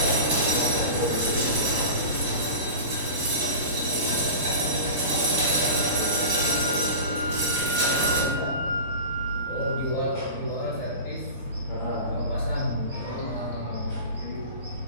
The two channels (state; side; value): inverted; both; correlation -0.32